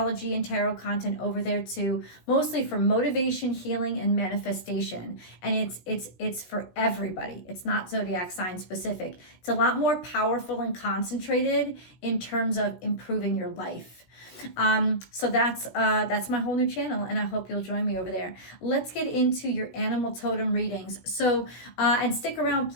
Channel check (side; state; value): right; late; 16 ms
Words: and tarot content over there too, mostly for motivation, healing, and manifestation. And it's for everybody. It's not zodiac sign specific. It's a lot more powerful and concentrated in terms of improving your life. So that's my whole new channel, and I hope you'll join me over there. Let's get into your animal totem readings. So, and stick around